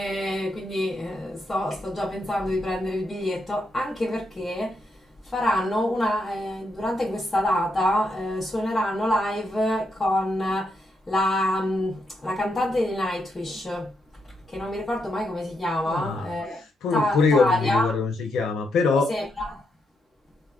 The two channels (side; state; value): both; normal; correlation 0.81